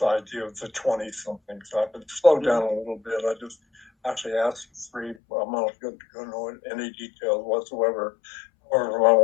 idea of the 20 something. So I've been slowed down a little bit. I just actually asked three. I'm not going to know any details whatsoever. Or my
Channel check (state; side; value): drops out; right; at 5.2 s